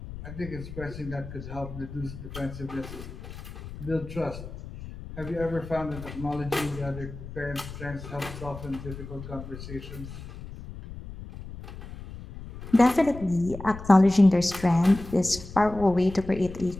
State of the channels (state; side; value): noise; left; rumble, 12 dB below the sound